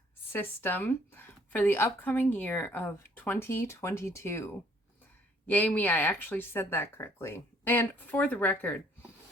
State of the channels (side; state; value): both; normal; correlation 0.62